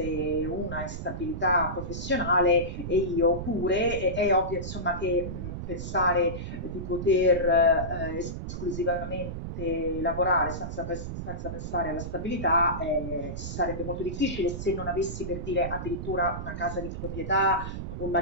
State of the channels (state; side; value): noise; right; rumble, 6 dB below the sound